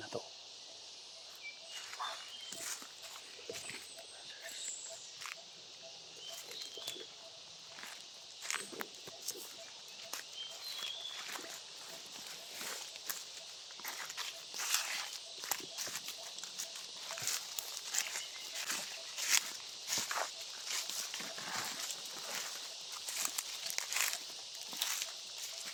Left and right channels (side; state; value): both; identical; correlation 1.00